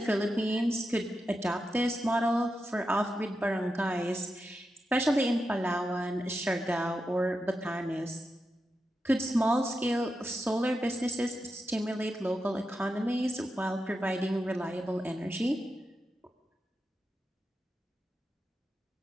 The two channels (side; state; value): both; normal; correlation 0.88